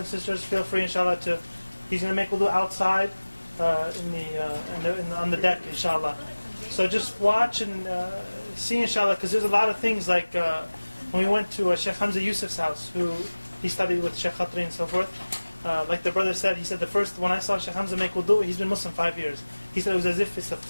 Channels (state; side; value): inverted; both; correlation -1.00